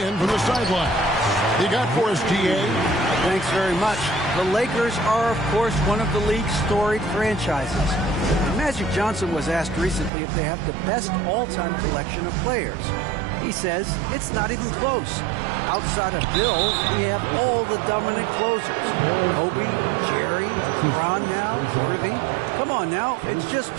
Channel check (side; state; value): left; drops out; at 10.1 s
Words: from the sideline. You got for us, DA? Thanks very much. The Lakers are, of course, one of the league's storied franchises. Magic Johnson was asked recently if they have the best all-time collection of players. He says it's not even close. Outside of Bill, we have all the dominant closers. Kobe, Jerry, Ron now, Irving. Come on now, it's just